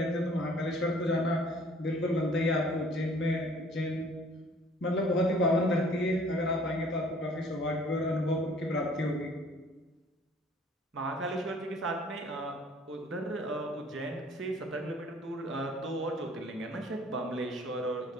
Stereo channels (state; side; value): normal; both; correlation 0.55